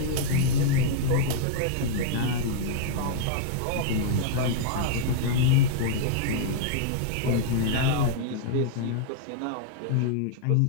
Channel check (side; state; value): both; different; correlation -0.01